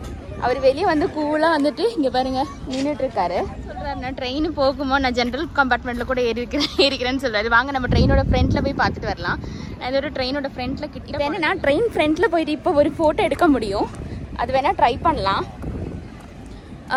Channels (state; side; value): identical; both; correlation 1.00